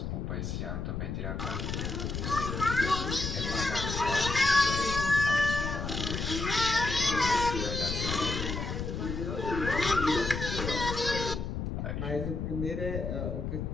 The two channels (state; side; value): noise; left; rumble, 3 dB below the sound